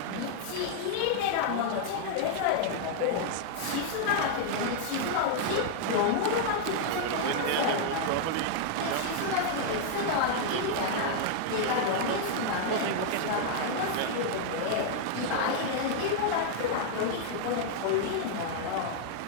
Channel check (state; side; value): different; both; correlation 0.00